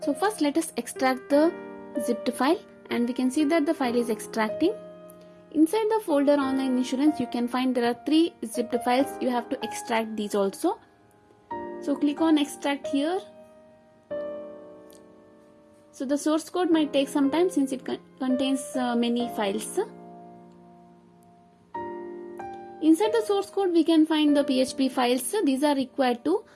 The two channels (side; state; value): both; identical; correlation 1.00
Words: So first let us extract the zipped file, and we can see that the file is extracting. Inside the folder online insurance you can find there are 3 zipped files. You have to extract these also. So click on extract here. So the source code might take some time since it contains many files. Inside the source code we can find the PHP files. These are required to